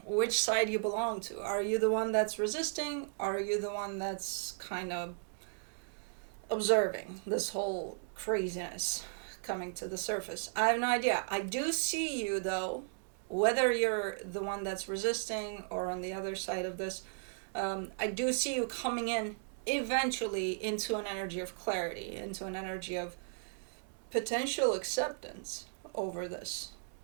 which side you belong to. Are you the one that's resisting? Are you the one that's kind of observing this whole craziness coming to the surface? I have no idea. I do see you, though, whether you're the one that's resisting or on the other side of this. I do see you coming in eventually into an energy of clarity, into an energy of potential acceptance over this.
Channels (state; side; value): silent; left; digital silence